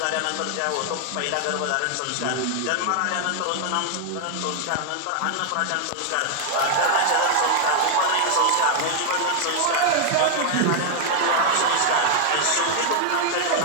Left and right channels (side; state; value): both; different; correlation 0.00